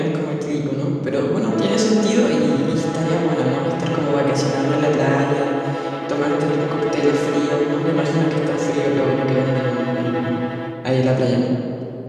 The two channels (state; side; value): identical; both; correlation 1.00